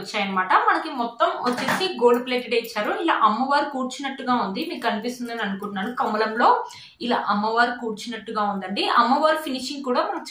మనకి మొత్తం వచ్చేసి గోల్డ్ ప్లేటెడ్ ఇచ్చారు. ఇలా అమ్మవారు కూర్చున్నట్టుగా ఉంది, మీకు కనిపిస్తుందని అనుకుంటున్నాను. కమలంలో ఇలా అమ్మవారు కూర్చున్నట్టుగా ఉందండి. అమ్మవారు ఫినిషింగ్ కూడా మనకు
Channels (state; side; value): identical; both; correlation 1.00